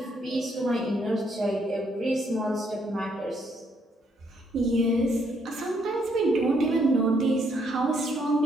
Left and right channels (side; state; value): both; normal; correlation 0.72